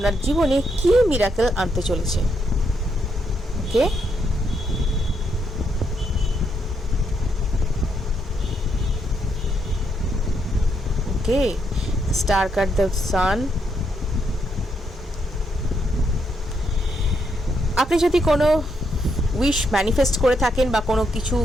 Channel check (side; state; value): both; normal; correlation 0.77